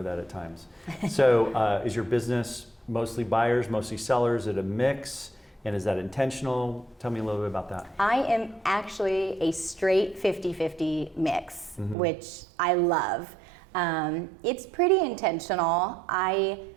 that at times. So is your business mostly buyers, mostly sellers? Is it a mix? And is that intentional? Tell me a little bit about that. I am actually a straight 50-50 mix, which I love. It's pretty intentional.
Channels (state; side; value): drops out; left; at 12.0 s